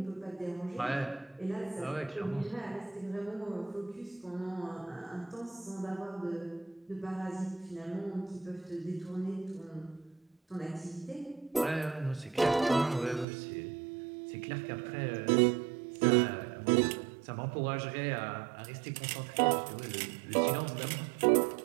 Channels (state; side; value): drops out; left; at 13.2 s